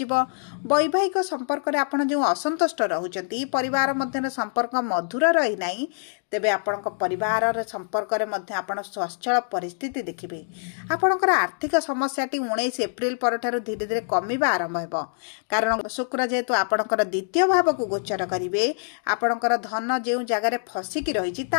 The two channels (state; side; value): silent; right; 62 dB below the other